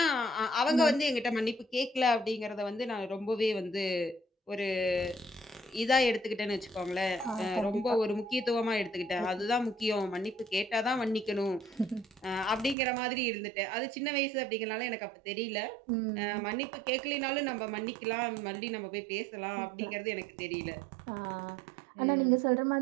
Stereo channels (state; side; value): drops out; left; at 12.8 s